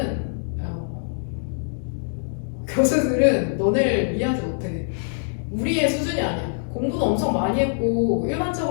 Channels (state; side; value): silent; right; digital silence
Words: 교수들은 너네를 이해하지 못해. 우리의 수준이 아니야. 공부도 엄청 많이 했고